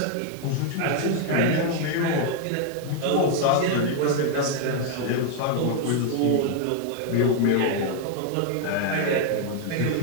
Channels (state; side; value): different; both; correlation 0.00